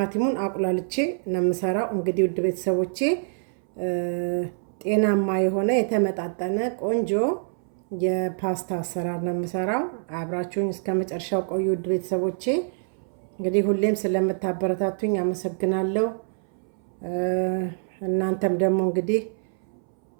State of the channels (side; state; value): left; silent; 61 dB below the other